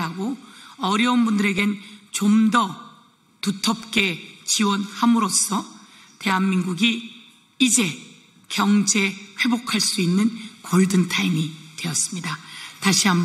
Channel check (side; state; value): both; identical; correlation 1.00